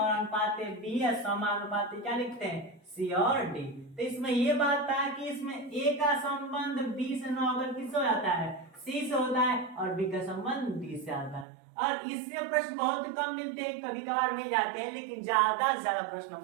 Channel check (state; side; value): drops out; left; at 11.5 s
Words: अनुपात बी या समानुपात क्या लिखते हैं सी और डी तो इसमें ये बात था कि इसमें ए का संबंध बी से न होकर किससे हो जाता है सी से होता है और बी का संबंध डी से आता है और इससे प्रश्न बहुत कम मिलते हैं कभी कभार मिल जाते हैं लेकिन ज्यादा से ज्यादा प्रश्न हम